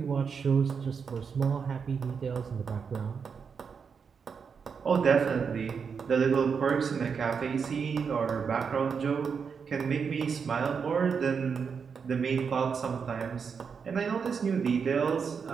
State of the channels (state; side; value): quieter; left; 6.1 dB